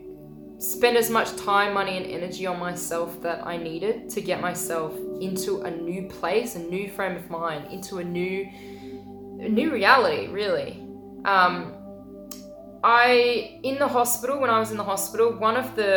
spend as much time, money, and energy on myself that I needed to get myself into a new place, a new frame of mind, into a new reality, really. In the hospital, when I was in the hospital, one of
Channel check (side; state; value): both; identical; correlation 1.00